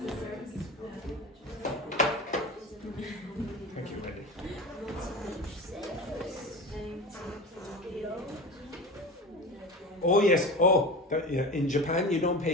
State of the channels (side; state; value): both; normal; correlation 0.30